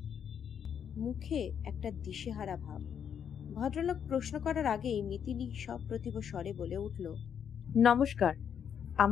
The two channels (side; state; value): right; quieter; 8.1 dB